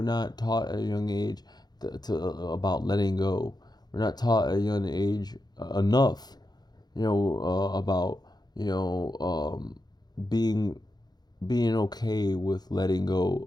not taught at a young age about letting go. We're not taught at a young age enough, about being okay with letting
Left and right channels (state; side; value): late; right; 0.20 ms